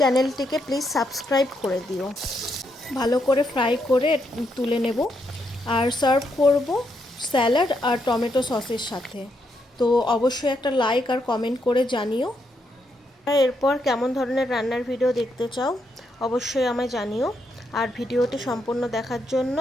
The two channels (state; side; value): normal; both; correlation 0.79